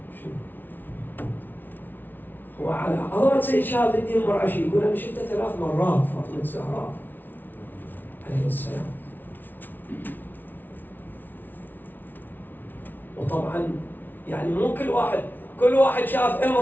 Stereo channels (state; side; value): late; right; 0.089 ms